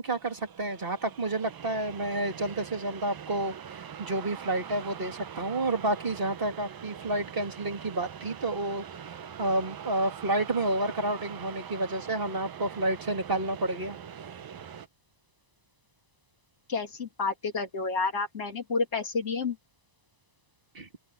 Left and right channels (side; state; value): left; late; 1.0 ms